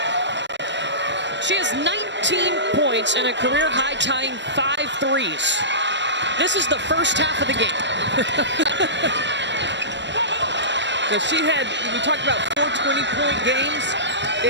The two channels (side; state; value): left; late; 0.52 ms